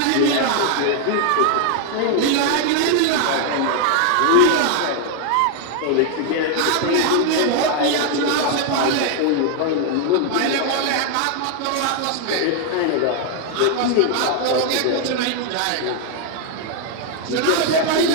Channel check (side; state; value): both; different; correlation 0.00